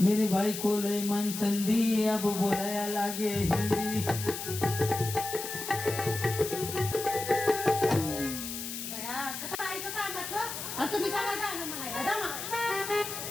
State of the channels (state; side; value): noise; left; hiss, 7 dB below the sound